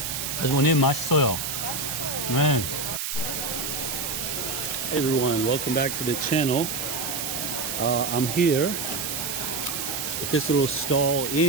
아주머님 맛있어요. Man. Hey everyone, welcome back to the channel. I'm here at this little stall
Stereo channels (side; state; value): right; noise; hiss, 3 dB below the sound